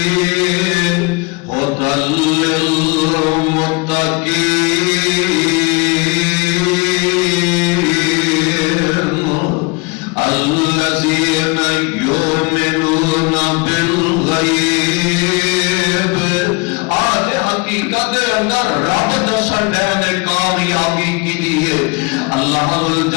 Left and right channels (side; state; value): right; quieter; 27.7 dB